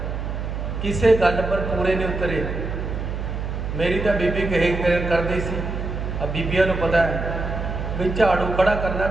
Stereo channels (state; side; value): noise; right; hum, 4 dB below the sound